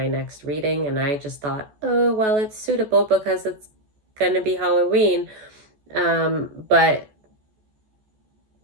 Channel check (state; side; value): late; left; 14 ms